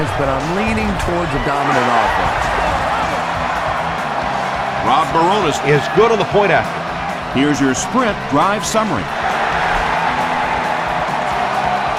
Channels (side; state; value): both; identical; correlation 1.00